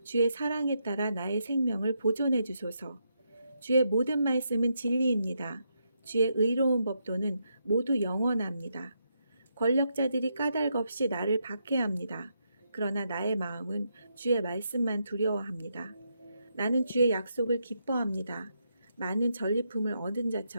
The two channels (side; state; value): both; inverted; correlation -0.80